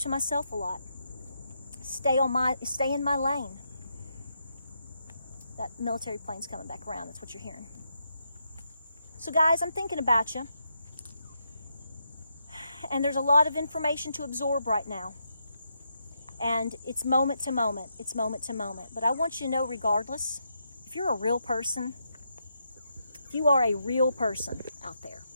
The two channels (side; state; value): both; inverted; correlation -0.81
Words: myself a lot. Stay in my lane. That military plane's coming back around. That's what you're hearing. So guys, I'm thinking about you. And there's a lot of information to absorb right now. And it's moment to moment. It's moment to moment. But I want you to know, regardless, if you're a real person, if you are a real person out there,